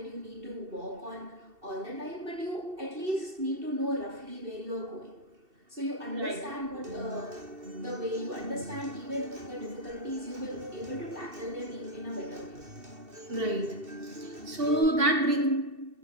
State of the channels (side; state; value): left; late; 2.7 ms